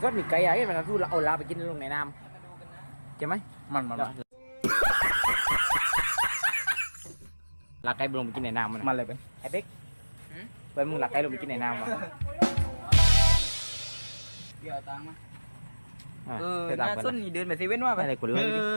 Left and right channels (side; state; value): both; inverted; correlation -1.00